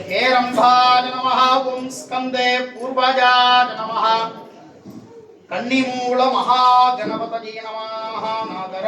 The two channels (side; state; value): both; identical; correlation 1.00